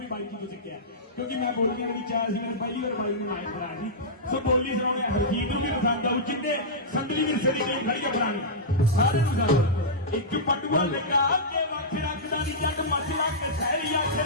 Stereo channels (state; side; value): normal; both; correlation -0.13